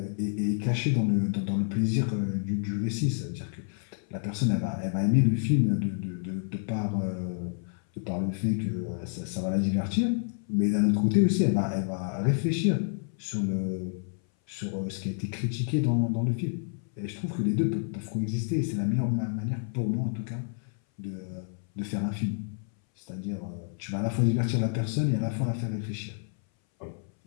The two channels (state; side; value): silent; right; 59 dB below the other